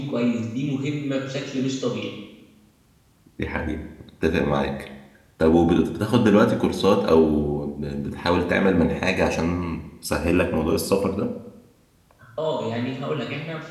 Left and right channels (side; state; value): both; identical; correlation 1.00